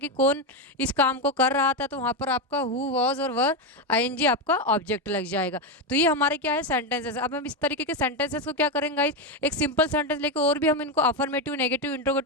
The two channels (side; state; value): both; normal; correlation 0.10